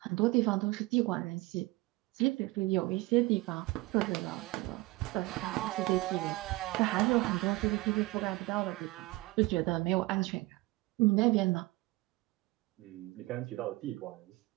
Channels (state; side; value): quieter; left; 21.6 dB